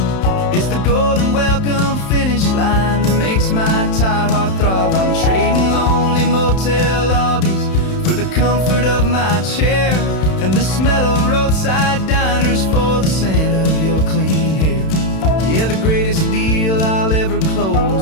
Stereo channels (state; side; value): late; right; 31 ms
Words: It's the golden welcome finish line that makes my tired heart throb. I'm trading lonely motel lobbies for the comfort of my chair, and the smell of roadside diners for the scent of your clean hair. Yeah, the greatest deal I'll ever